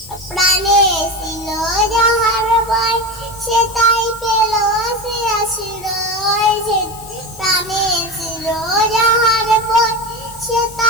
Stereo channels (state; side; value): noise; left; hiss, 18 dB below the sound